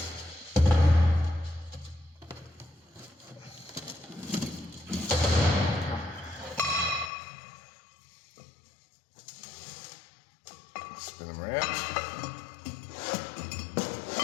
Spin them around.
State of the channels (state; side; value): drops out; right; at 7.1 s